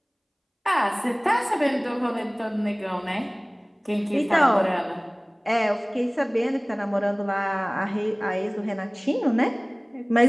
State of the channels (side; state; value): both; identical; correlation 1.00